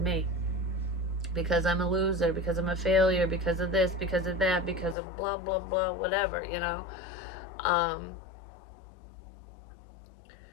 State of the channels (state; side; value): drops out; right; at 5.0 s